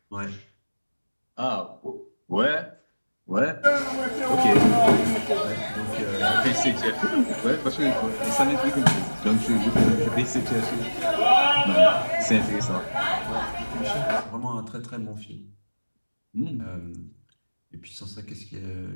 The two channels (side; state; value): both; inverted; correlation -1.00